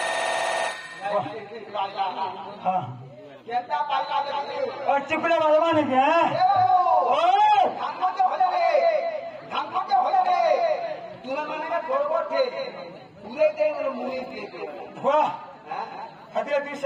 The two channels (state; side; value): identical; both; correlation 1.00